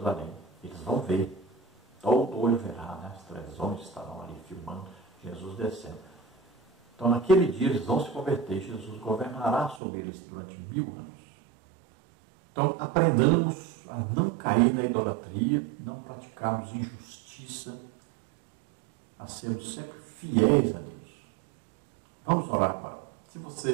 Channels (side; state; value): left; drops out; at 9.8 s